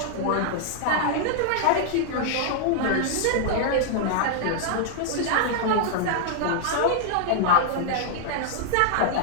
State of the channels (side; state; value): both; different; correlation -0.01